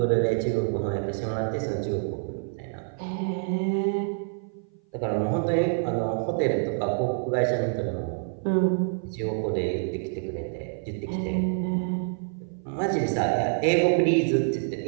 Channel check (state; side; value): silent; left; 57 dB below the other